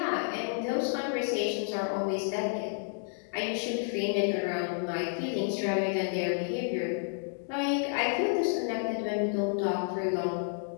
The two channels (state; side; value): silent; right; 57 dB below the other